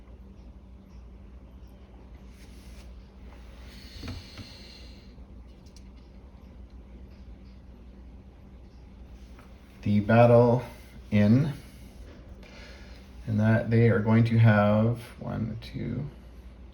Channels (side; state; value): both; identical; correlation 1.00